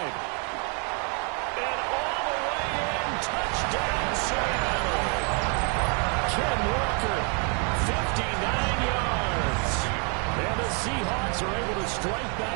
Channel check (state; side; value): quieter; left; 37.7 dB